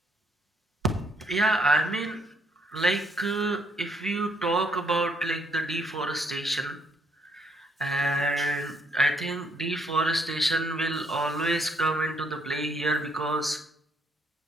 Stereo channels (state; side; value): normal; both; correlation 0.69